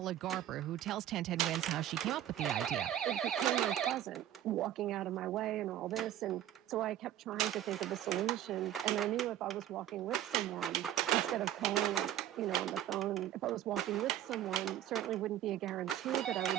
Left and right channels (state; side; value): quieter; left; 11.9 dB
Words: Garber, who tells 1010 Wins how she came up with the idea. It became unpleasant, walking out of my way and all this, and so I kept trying to think of a solution, and I knew if I was walking with someone, instead of calling, on the phone, if I was walking with someone, it certainly wouldn't be a guarantee that I